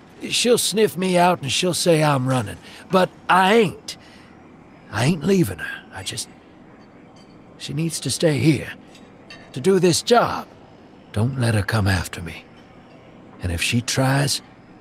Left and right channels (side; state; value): both; identical; correlation 1.00